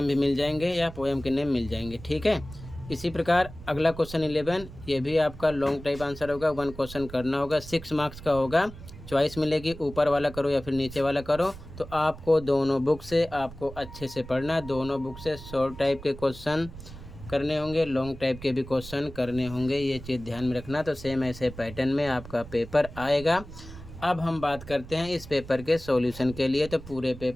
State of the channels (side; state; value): right; noise; rumble, 15 dB below the sound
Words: भी मिल जाएंगे या पोएम के नेम मिल जाएंगे, ठीक है। इसी प्रकार अगला क्वेश्चन 11, ये भी आपका लॉन्ग टाइप आंसर होगा, 1 क्वेश्चन करना होगा, 6 मार्क्स का होगा। चॉइस मिलेगी, ऊपर वाला करो या फिर नीचे वाला करो। तो आपको दोनों बुक से आपको अच्छे से पढ़ना है, दोनों बुक से शॉर्ट टाइप के क्वेश्चन करने होंगे, लॉन्ग टाइप के भी क्वेश्चन करने होंगे, ये चीज़ ध्यान में रखना। तो सेम ऐसे पैटर्न में आपका पेपर आएगा। अब हम बात करते हैं इस पेपर के सॉल्यूशन के लिए। तो पूरे